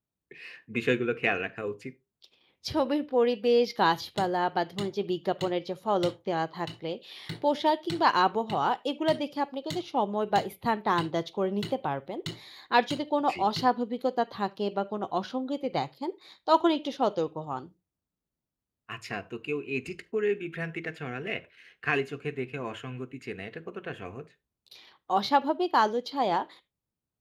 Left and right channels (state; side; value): identical; both; correlation 1.00